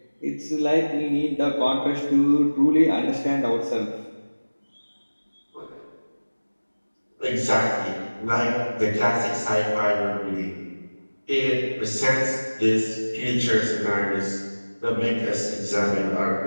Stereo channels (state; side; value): inverted; both; correlation -1.00